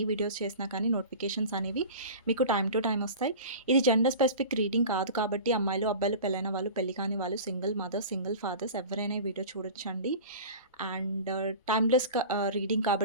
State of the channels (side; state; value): both; inverted; correlation -0.36